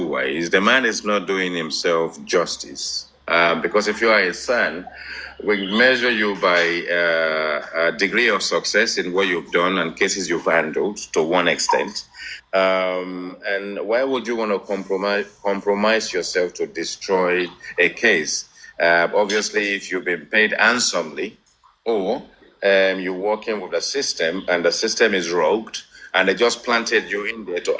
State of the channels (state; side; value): identical; both; correlation 1.00